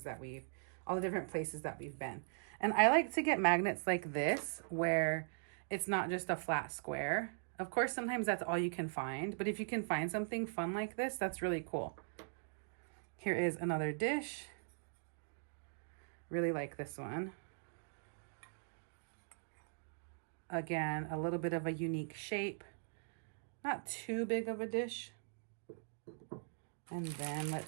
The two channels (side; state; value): left; silent; digital silence